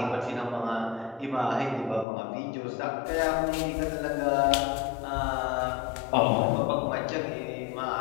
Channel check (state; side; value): drops out; right; at 2.1 s